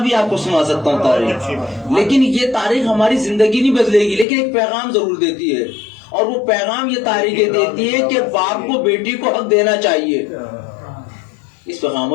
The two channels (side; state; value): right; drops out; at 4.2 s